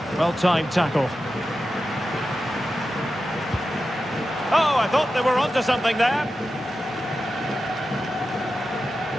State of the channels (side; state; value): both; normal; correlation 0.92